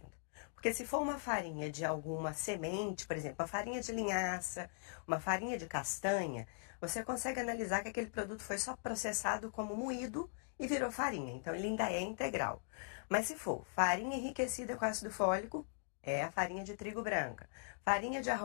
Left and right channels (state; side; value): silent; right; digital silence